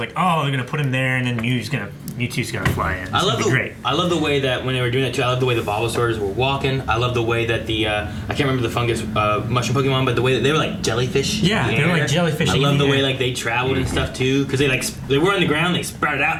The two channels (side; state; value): both; identical; correlation 1.00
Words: oh, they're going to put him there, and then Mewtwo's going to fly in. It's I love gonna be the great. I love the way that when they were doing that too. I love the way the Bulbasaurs were walking. I love the way that the I can't remember the fungus mushroom Pokemon, but the way that they were like jellyfish. Yeah, in the they were air. like jellyfish I in love the the way air. like they traveled and stuff too, because they were on the ground, they sprouted